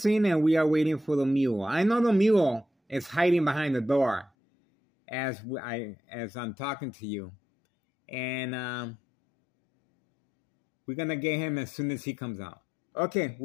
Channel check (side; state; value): right; drops out; at 4.3 s